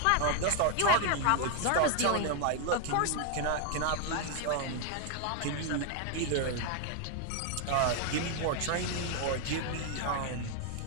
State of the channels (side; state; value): both; different; correlation 0.00